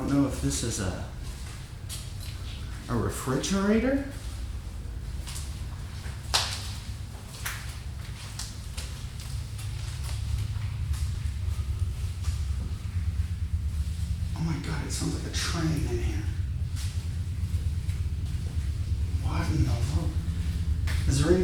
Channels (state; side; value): identical; both; correlation 1.00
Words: don't know if this is a refrigerator. Oh my God, it sounds like a train in here. What in the world? Is there